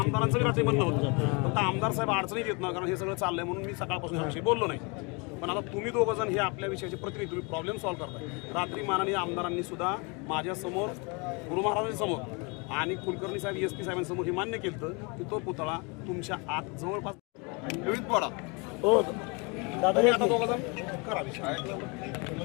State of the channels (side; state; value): right; quieter; 30.8 dB